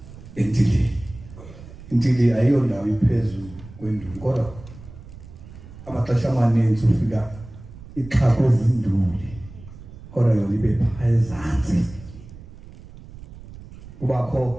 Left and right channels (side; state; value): right; noise; rumble, 17 dB below the sound